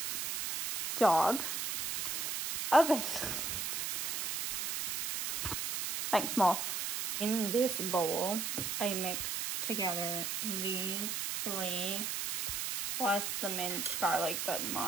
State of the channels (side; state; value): right; noise; hiss, 2 dB below the sound